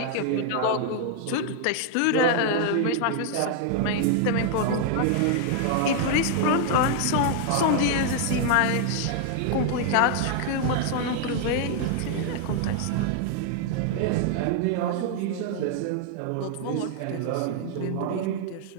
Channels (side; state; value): both; different; correlation 0.00